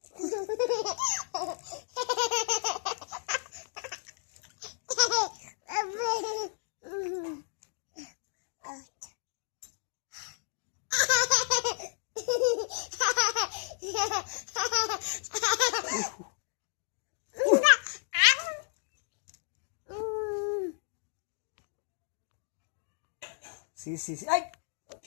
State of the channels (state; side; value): silent; right; digital silence